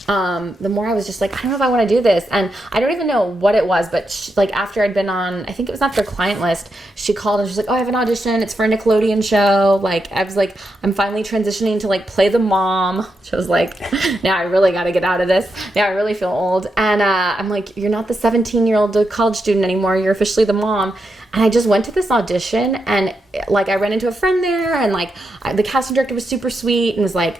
the more I was just I don't know if I want to do this. And I don't even know what it was, but after I'd been on, I think it was not their client list, she called and she's like, oh, I have an audition. It's for a Nickelodeon show. I was I'm finally transitioning to play the mom. She was now I really got to get out of this. Now I really feel old. And I'm you're not the 17-year-old college student anymore. You're officially the mom. And I just went to this audition, and I ran into a friend there, and the casting director was super sweet and was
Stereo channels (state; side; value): normal; both; correlation 0.85